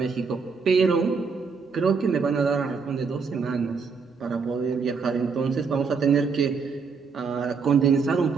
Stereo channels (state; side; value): quieter; left; 5.2 dB